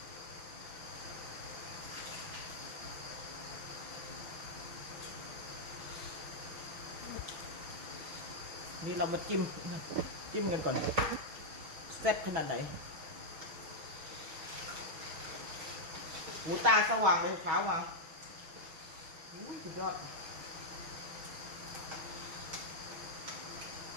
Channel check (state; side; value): late; left; 6.2 ms